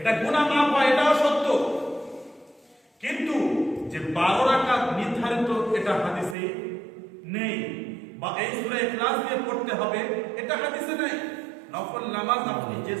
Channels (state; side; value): drops out; left; at 6.4 s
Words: গুনাহ মাফ হয়, এটাও সত্য। কিন্তু যে 12 রাকাত নির্ধারিত, এটা হাদিসে নেই। বা এই সূরা ইখলাস দিয়ে পড়তে হবে, এটা হাদিসে নেই। নফল নামাজ আপনি যে